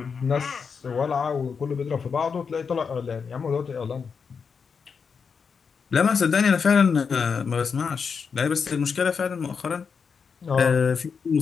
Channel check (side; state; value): right; quieter; 5.9 dB